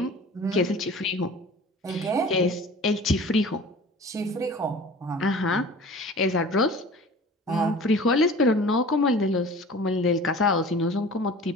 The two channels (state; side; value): normal; both; correlation 0.42